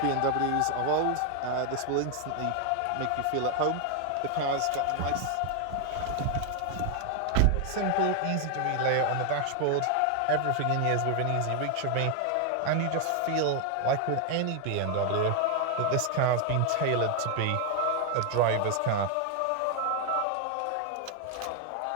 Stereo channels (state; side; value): different; both; correlation 0.00